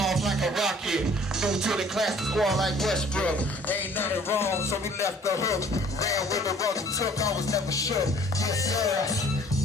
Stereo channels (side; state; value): both; normal; correlation 0.54